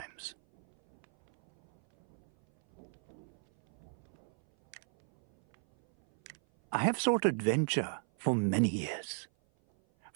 I have sought adventure for many years.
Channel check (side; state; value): left; silent; 54 dB below the other